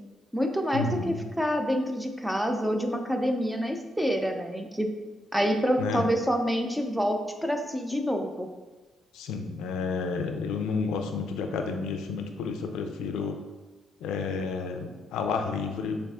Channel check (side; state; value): both; normal; correlation 0.80